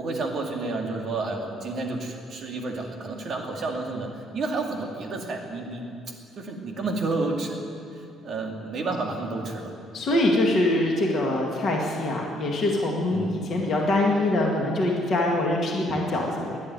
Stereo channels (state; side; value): normal; both; correlation 0.66